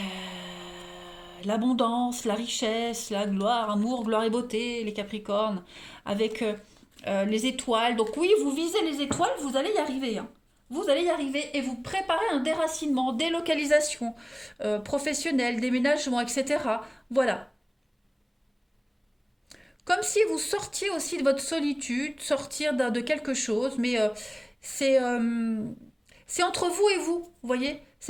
L'abondance, la richesse, la gloire, amour, gloire et beauté, les Capricornes. Avec les étoiles. Donc oui, vous visez les étoiles, vous allez y arriver. Hein. Vous allez y arriver et vous préparez un déracinement, délocalisation professionnelle, déménagement, etc. Voilà. Comme si vous sortiez aussi de votre solitude, sortir de quelque chose, mais c'est c'est entre vous et vous, voyez?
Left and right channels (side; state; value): both; identical; correlation 1.00